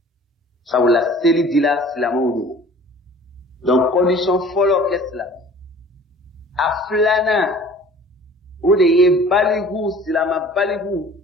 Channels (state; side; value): normal; both; correlation 0.48